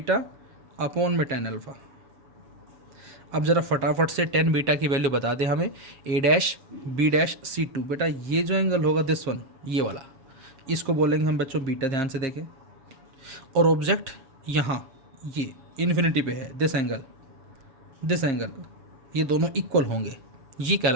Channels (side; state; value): left; late; 7.4 ms